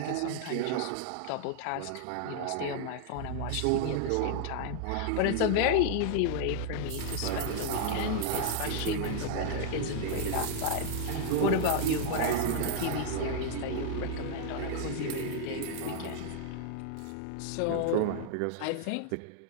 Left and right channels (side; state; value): both; different; correlation -0.01